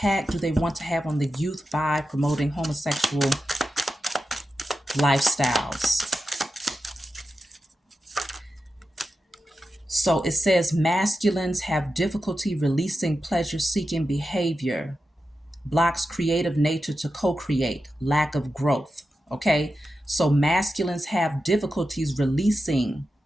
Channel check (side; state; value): both; normal; correlation 0.91